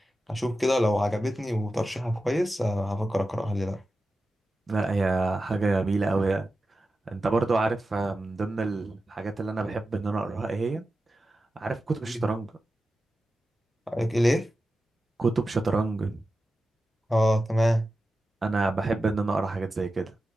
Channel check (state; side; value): normal; both; correlation 0.92